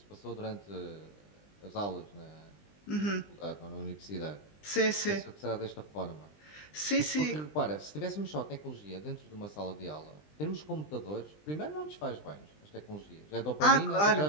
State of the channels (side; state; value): right; late; 20 ms